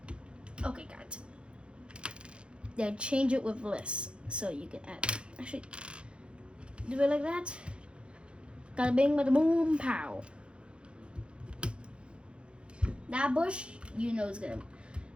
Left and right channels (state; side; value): late; left; 0.057 ms